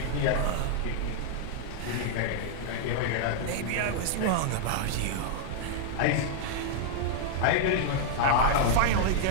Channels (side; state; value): both; different; correlation -0.01